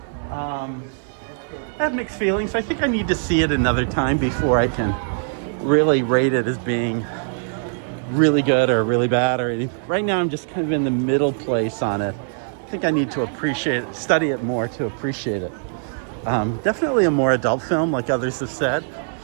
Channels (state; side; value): silent; left; digital silence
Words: I have mixed feelings. I think I need to see it another time before I can really rate it as being really good or really bad or anything. Right now I'm just kind of in the middle place on it. I think I need to appreciate it, study it more to appreciate it. Definitely a more adult film, like others have said,